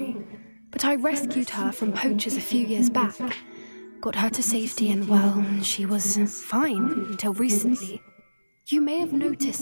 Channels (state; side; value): inverted; both; correlation -1.00